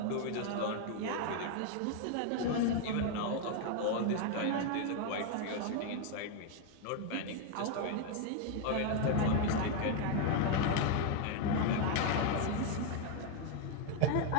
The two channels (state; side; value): different; both; correlation 0.00